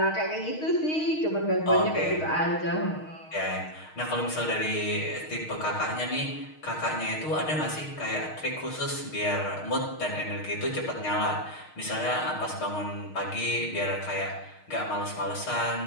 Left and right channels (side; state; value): right; late; 6.5 ms